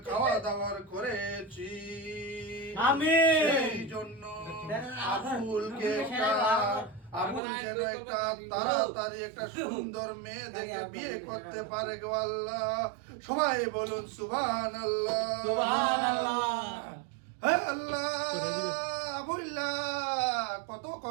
খাওয়া দাওয়ার করেছি। সেই জন্য আবুলকে আবুল যেন একটা তাড়াতাড়ি একটা সুন্দর মেয়ে দেখে বিয়ে করতে পারে গো আল্লাহ। সবাই বলুন সুবহানাল্লাহ। হে আল্লাহ, আবুল্লাহ কত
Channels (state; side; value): drops out; left; at 7.4 s